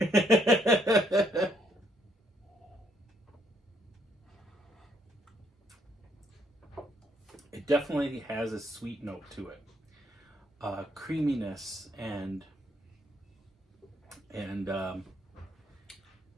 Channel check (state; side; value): normal; both; correlation 0.70